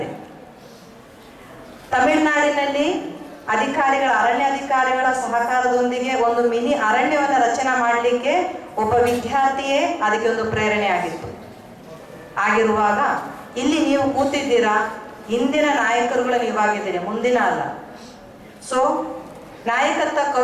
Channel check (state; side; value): identical; both; correlation 1.00